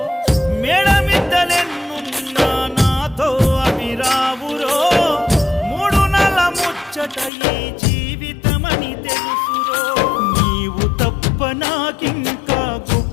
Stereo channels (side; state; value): right; drops out; at 7.3 s